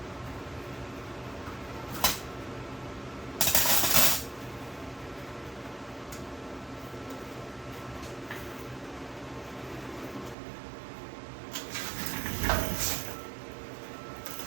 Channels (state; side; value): drops out; left; at 10.4 s